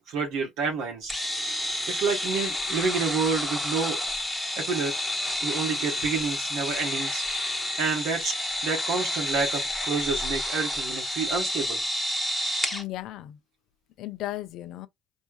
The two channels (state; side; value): normal; both; correlation 0.65